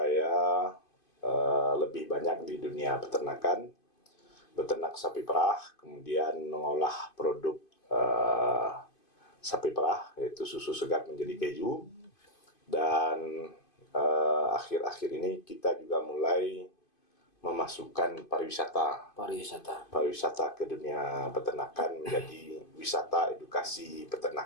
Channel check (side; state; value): right; late; 2.5 ms